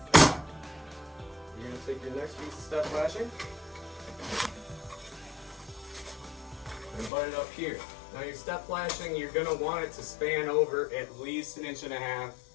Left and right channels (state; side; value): drops out; right; at 7.1 s